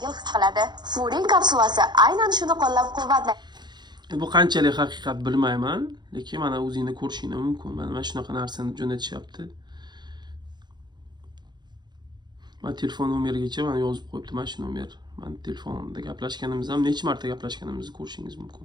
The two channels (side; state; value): left; late; 0.21 ms